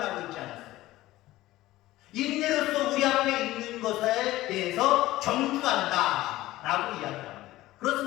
있지 않았어요. 인내로서 우리 앞에 있는 것에 대해서 경주한다 라고 이야기합니다.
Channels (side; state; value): right; quieter; 16.7 dB